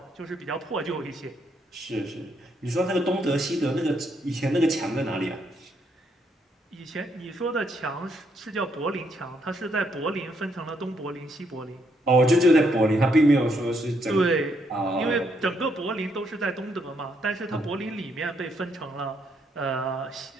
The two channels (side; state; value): both; normal; correlation 0.74